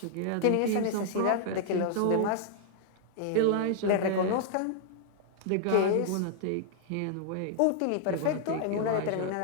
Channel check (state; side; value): different; both; correlation -0.01